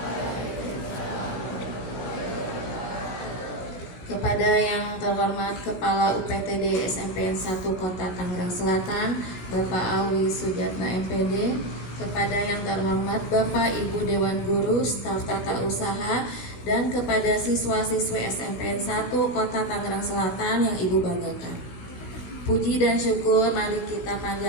Kepada yang terhormat Kepala UPTD SMPN 1 Kota Tangerang Selatan, Bapak Awi Sujatna MPD, kepada yang terhormat Bapak Ibu Dewan Guru, staf tata usaha, dan kepada siswa-siswi SMPN 1 Kota Tangerang Selatan yang Ibu banggakan. Puji dan syukur mari kita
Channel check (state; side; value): late; right; 17 ms